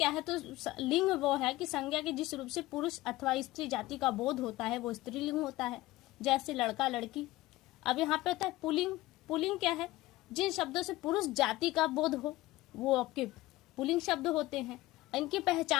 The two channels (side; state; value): right; quieter; 17.8 dB